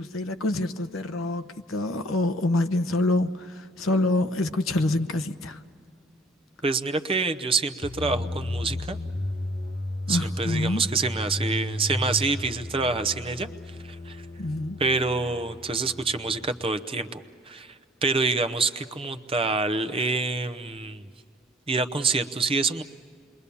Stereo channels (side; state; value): both; normal; correlation 0.54